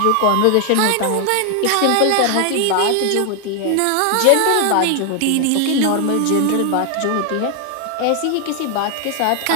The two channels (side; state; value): both; different; correlation 0.00